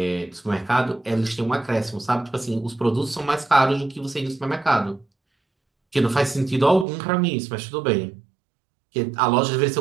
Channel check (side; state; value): left; drops out; at 6.9 s